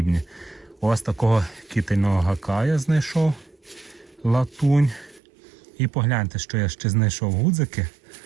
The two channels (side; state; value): left; drops out; at 5.2 s